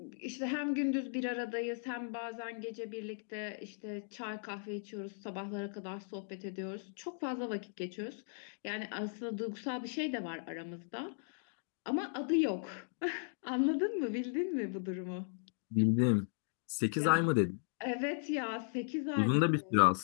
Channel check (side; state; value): right; silent; digital silence